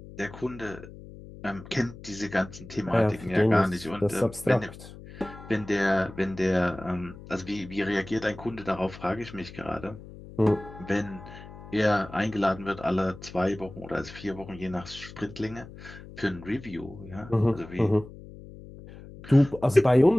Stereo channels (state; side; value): noise; left; hum, 16 dB below the sound